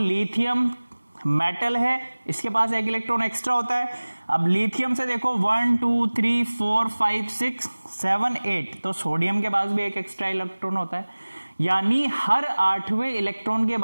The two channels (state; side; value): inverted; both; correlation -1.00